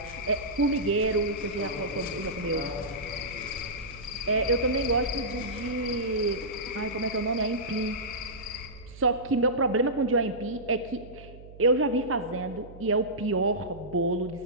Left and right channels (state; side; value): noise; right; hum, 18 dB below the sound